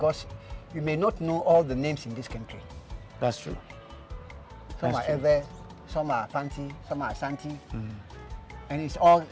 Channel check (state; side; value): identical; both; correlation 1.00